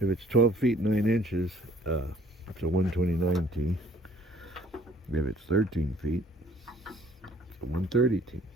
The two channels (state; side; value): normal; both; correlation 0.58